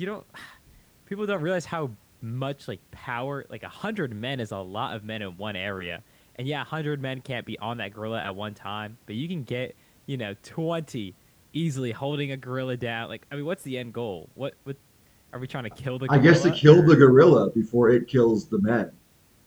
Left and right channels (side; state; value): both; identical; correlation 1.00